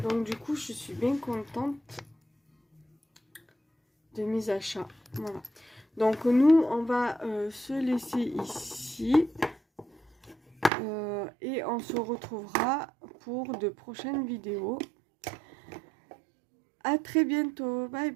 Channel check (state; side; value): drops out; left; at 10.7 s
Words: Donc du coup, je suis bien contente de mes achats. Voilà. Donc nous, on va se laisser ici. Et on se retrouvera pour de prochaines vidéos. À très bientôt. Bye